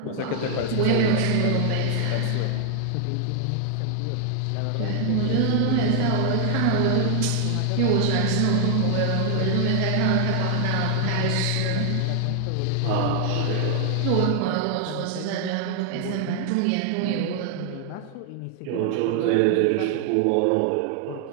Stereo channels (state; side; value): different; both; correlation 0.00